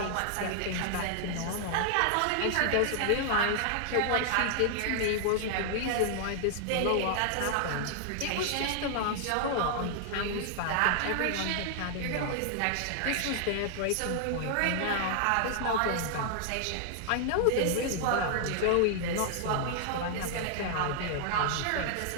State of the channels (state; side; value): different; both; correlation -0.01